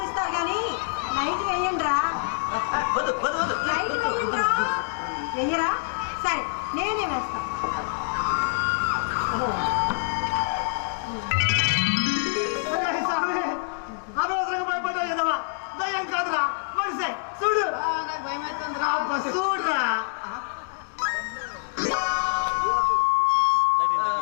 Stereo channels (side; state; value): right; silent; digital silence